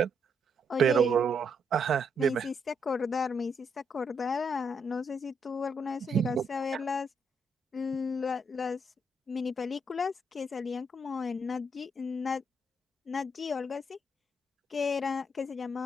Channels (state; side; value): normal; both; correlation 0.76